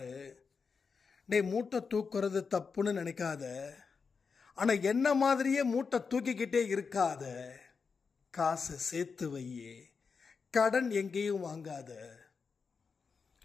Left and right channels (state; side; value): quieter; right; 5.3 dB